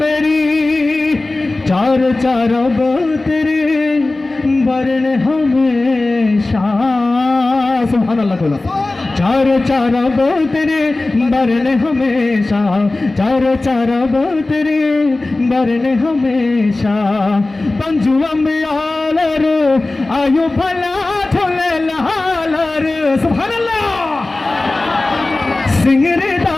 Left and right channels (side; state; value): right; quieter; 3.0 dB